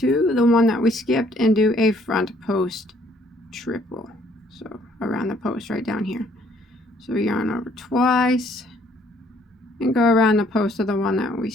the one that we skipped and do a front post triple. So around the post right down here. So we yarn over twice and go around the post of the one that we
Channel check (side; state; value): both; normal; correlation 0.64